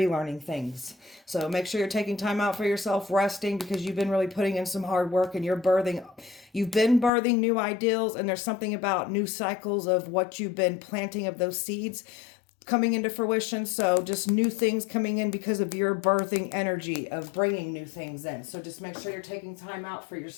things. So make sure you're taking time out for yourself, resting, because you've been really putting in some hard work and you've been birthing new ideals, and there's something about new cycles of what you've been planting of those seeds coming into fruition. So just new things coming in because of your birthing energy of bringing new things in. So just make sure you're taking time out for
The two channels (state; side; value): drops out; right; at 7.1 s